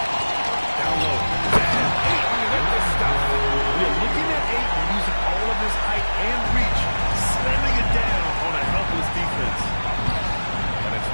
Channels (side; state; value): both; inverted; correlation -1.00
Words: Down low. And 8. With the stuff. You're looking at 8 and using all of his height and reach, slamming it down on a helpless defense. And it's